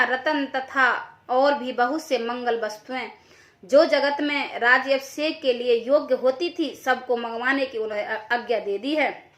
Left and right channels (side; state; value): both; identical; correlation 1.00